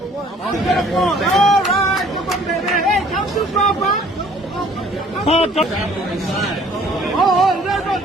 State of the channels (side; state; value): both; normal; correlation 0.56